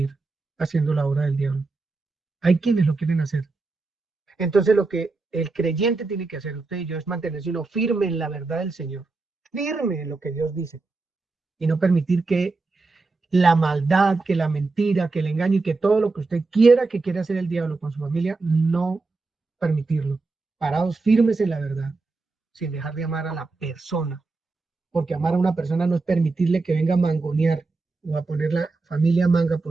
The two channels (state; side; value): quieter; left; 3.7 dB